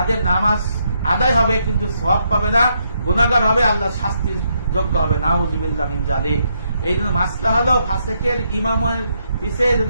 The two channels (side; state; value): both; inverted; correlation -0.77